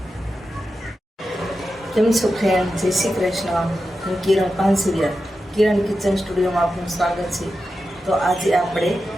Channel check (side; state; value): both; normal; correlation 0.90